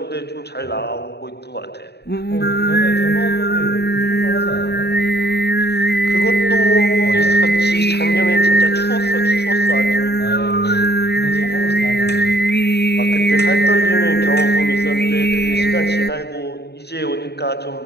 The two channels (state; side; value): late; right; 0.48 ms